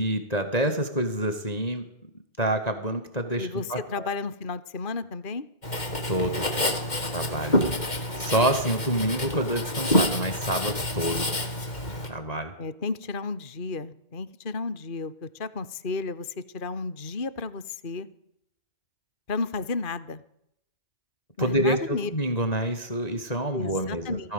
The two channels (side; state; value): right; late; 2.1 ms